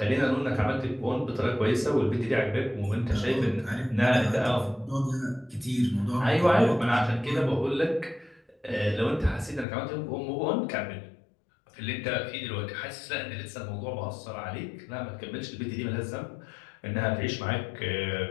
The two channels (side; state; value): right; drops out; at 9.7 s